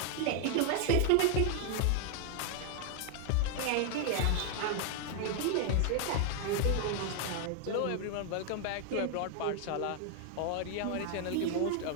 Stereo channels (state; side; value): different; both; correlation 0.00